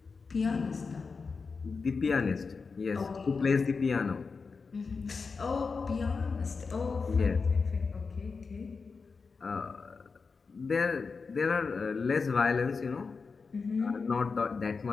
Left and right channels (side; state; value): right; quieter; 4.8 dB